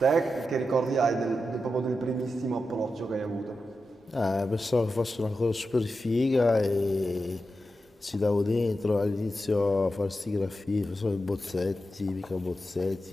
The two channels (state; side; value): normal; both; correlation 0.90